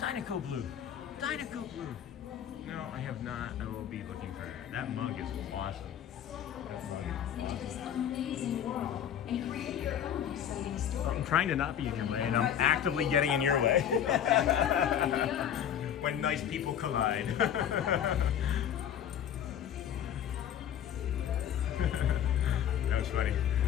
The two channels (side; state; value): right; quieter; 9.6 dB